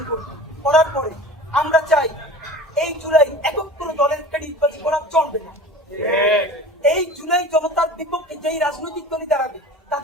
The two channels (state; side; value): normal; both; correlation 0.38